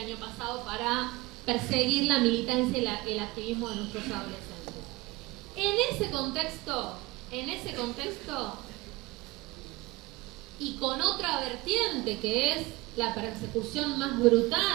año pasado para perseguir la militancia y el activismo de nuestros adolescentes. En ese contexto, y con otra vertiente que es la persecución más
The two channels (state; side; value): quieter; left; 21.4 dB